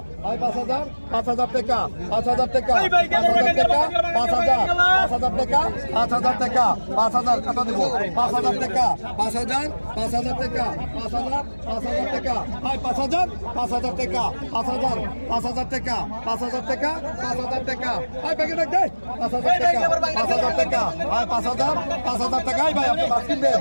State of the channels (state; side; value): inverted; both; correlation -1.00